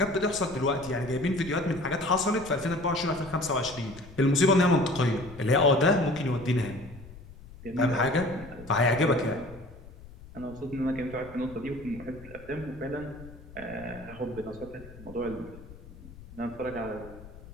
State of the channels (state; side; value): noise; left; rumble, 18 dB below the sound